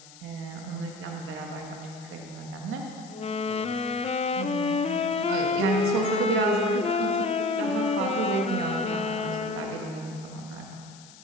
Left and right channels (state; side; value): noise; left; hiss, 21 dB below the sound